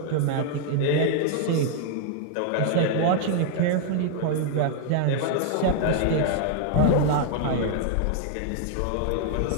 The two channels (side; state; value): both; different; correlation 0.00